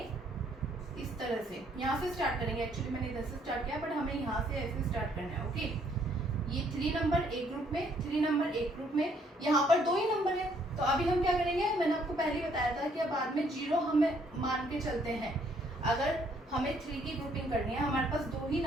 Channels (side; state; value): both; normal; correlation 0.66